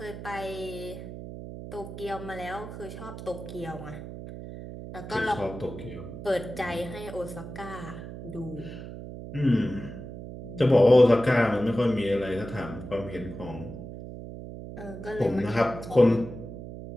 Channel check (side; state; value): right; noise; hum, 11 dB below the sound